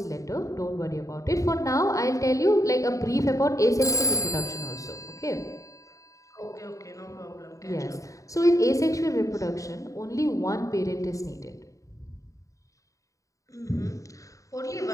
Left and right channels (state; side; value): late; right; 0.16 ms